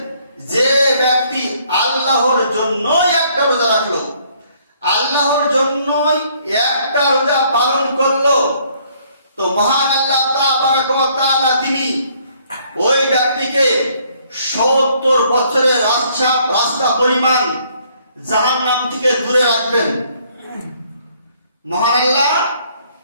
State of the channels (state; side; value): inverted; both; correlation -0.64